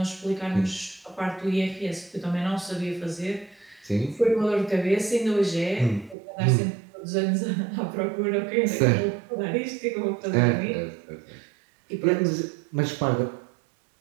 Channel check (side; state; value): left; drops out; at 6.2 s